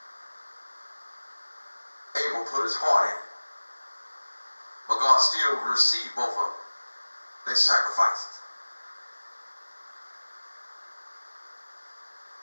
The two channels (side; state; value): both; inverted; correlation -1.00